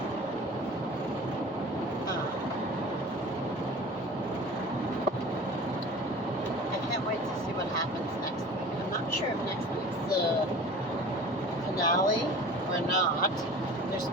I can't wait to see what happens next week. I'm not sure if next week's the finale or not. There's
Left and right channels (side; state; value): both; normal; correlation 0.40